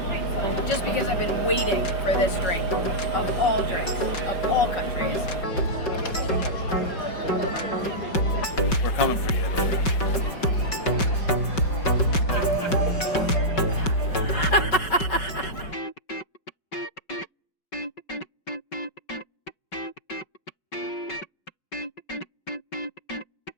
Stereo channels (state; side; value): late; right; 5.3 ms